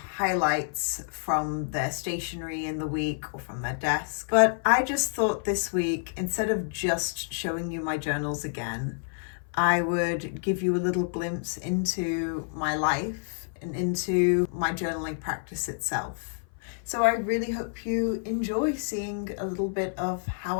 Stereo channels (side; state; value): right; silent; 55 dB below the other